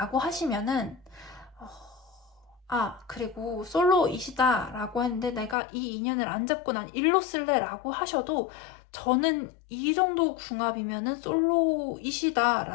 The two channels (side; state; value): right; drops out; at 5.6 s